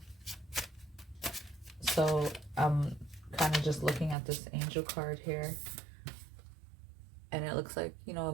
So I'm kind of just looking at this angel card here, and it looks like, you know, a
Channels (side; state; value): left; drops out; at 4.2 s